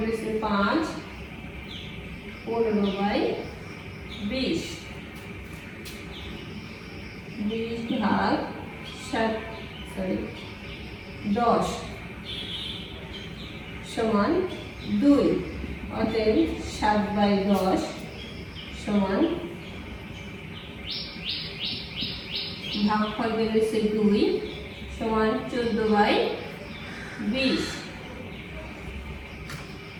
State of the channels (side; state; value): both; identical; correlation 1.00